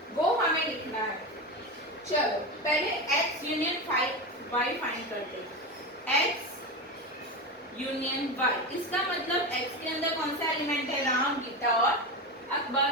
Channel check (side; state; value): both; normal; correlation 0.20